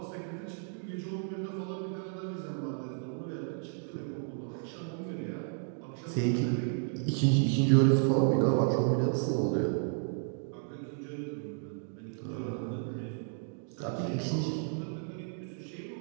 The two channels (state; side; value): silent; left; 56 dB below the other